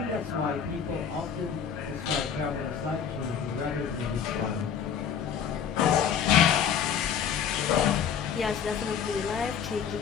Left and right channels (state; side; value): quieter; right; 7.7 dB